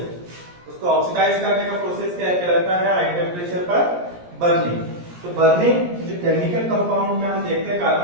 उसको ऑक्सीडाइज करने का प्रोसेस क्या कहलाता है? हाई टेम्परेचर पर बर्निंग। तो बर्निंग जो केमिकल कंपाउंड में हम देखते हैं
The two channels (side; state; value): left; late; 17 ms